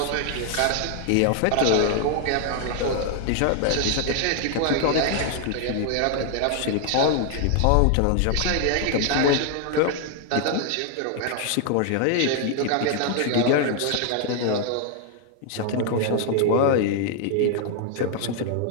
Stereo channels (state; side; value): different; both; correlation 0.00